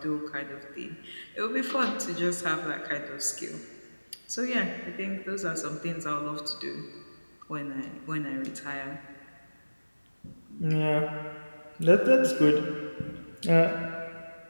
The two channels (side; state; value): both; inverted; correlation -1.00